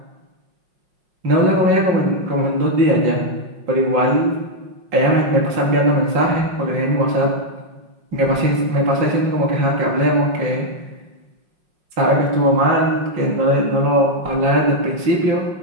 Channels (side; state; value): left; late; 5.5 ms